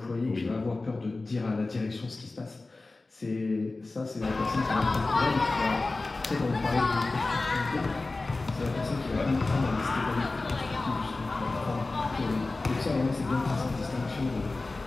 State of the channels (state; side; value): quieter; right; 3.3 dB